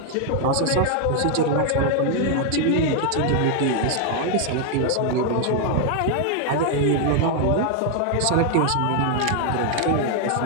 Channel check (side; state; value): both; different; correlation 0.00